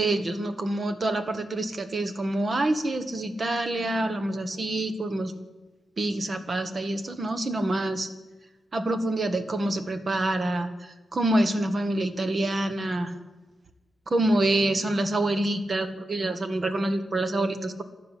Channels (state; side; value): normal; both; correlation 0.89